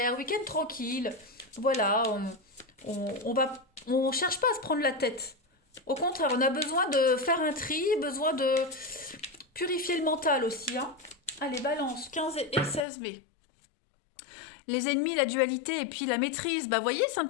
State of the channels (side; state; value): right; drops out; at 12.9 s